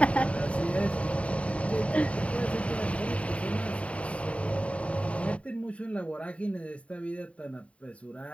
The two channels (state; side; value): late; right; 0.064 ms